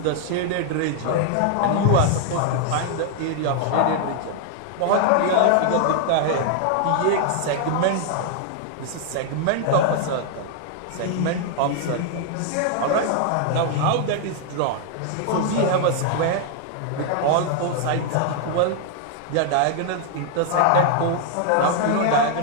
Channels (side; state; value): both; different; correlation 0.00